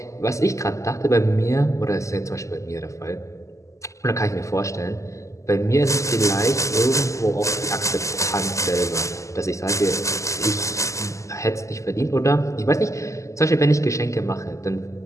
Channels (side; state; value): right; late; 0.15 ms